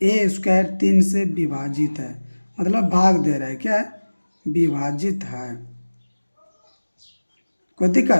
ए स्क्वायर 3 से विभाजित है, मतलब भाग दे रहा है, क्या है, विभाजित है। कोई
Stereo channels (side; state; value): both; inverted; correlation -1.00